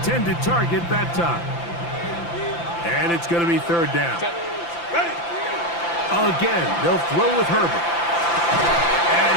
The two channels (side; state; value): right; late; 5.9 ms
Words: target that time. And it's going to be third down. Again, they'll throw with Herbert. And